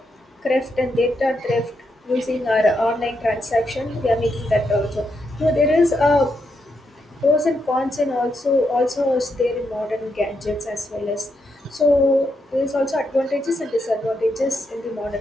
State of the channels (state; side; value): normal; both; correlation 0.81